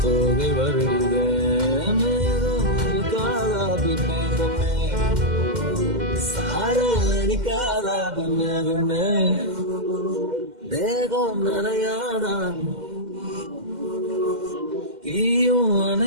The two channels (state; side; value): late; left; 2.1 ms